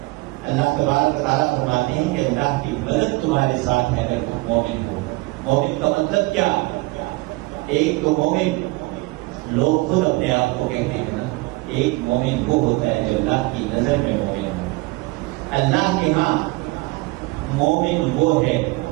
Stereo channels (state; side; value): quieter; left; 23.2 dB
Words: اللہ تبارک و تعالیٰ فرماتے ہیں کہ اللہ کی مدد تمہارے ساتھ ہے اگر تم مومن ہو۔ مومن کا مطلب کیا؟ ایک تو مومن لوگ خود اپنے آپ کو کہتے ہیں نا، ایک مومن وہ ہوتا ہے جو اللہ کی نظر میں مومن ہے۔ اللہ کے ہاں مومن وہ ہے